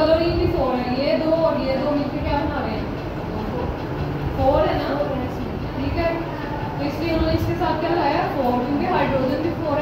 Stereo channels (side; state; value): both; identical; correlation 1.00